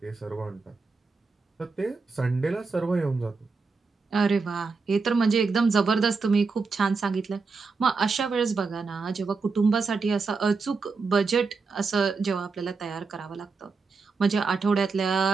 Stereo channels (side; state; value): left; quieter; 4.4 dB